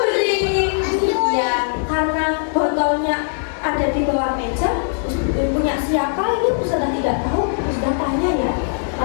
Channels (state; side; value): silent; right; 66 dB below the other